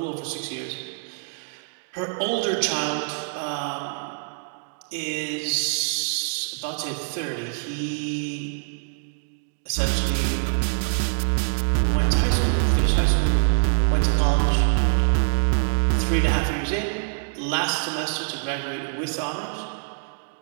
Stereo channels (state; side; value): silent; left; digital silence